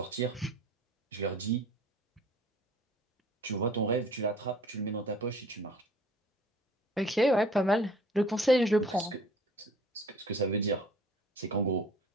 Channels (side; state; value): both; normal; correlation 0.50